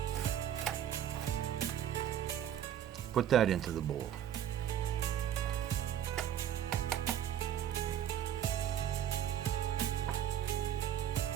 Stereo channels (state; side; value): quieter; left; 10.3 dB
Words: Put that into the bowl.